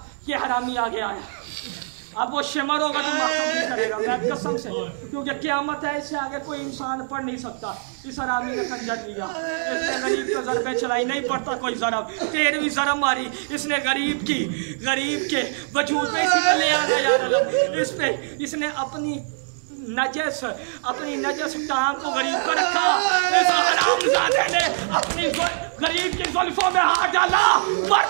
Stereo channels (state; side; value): silent; left; digital silence